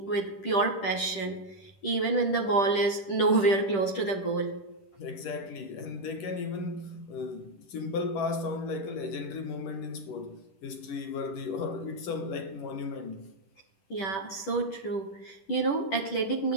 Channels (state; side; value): late; right; 10 ms